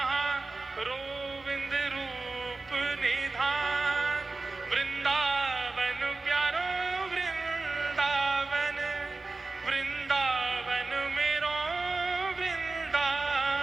गोविंद रूप निधान। वृंदावन प्यारो वृंदावन, वृंदावन मेरो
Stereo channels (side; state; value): left; quieter; 3.5 dB